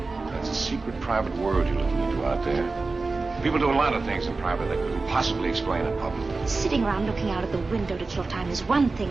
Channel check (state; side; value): quieter; left; 3.8 dB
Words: a secret private world you're looking into out there. People do a lot of things in private they couldn't possibly explain in public. Sitting around looking out at the window to kill time is one